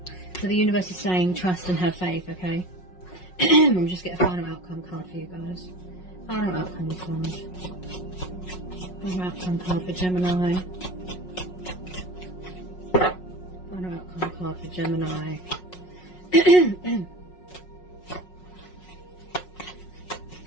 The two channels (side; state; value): right; late; 5.5 ms